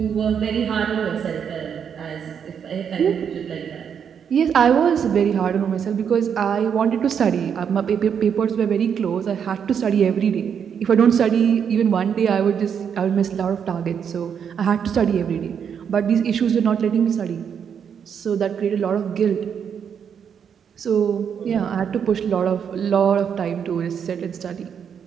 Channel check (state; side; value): quieter; left; 7.6 dB